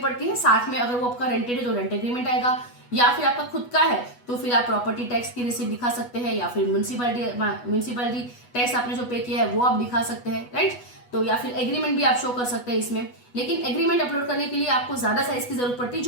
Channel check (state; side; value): late; right; 8.2 ms